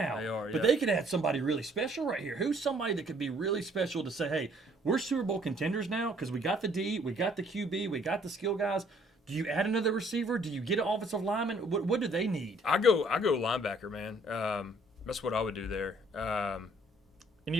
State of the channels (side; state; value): both; normal; correlation 0.61